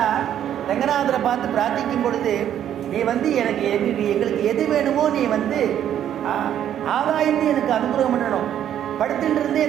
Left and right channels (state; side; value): quieter; left; 10.4 dB